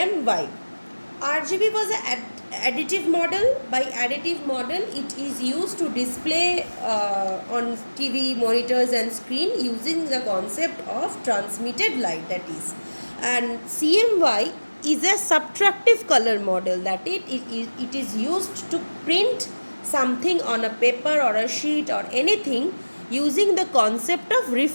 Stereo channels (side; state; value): both; inverted; correlation -1.00